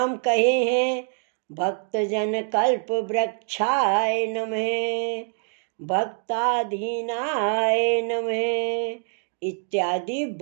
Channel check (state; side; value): silent; left; 56 dB below the other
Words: कहे हैं। भक्तजन कल्प वृक्षाय नमः, भक्ताधीनाय नमः इत्यादि